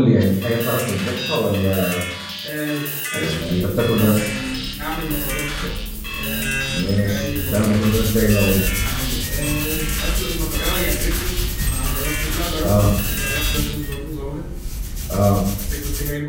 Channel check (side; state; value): both; identical; correlation 1.00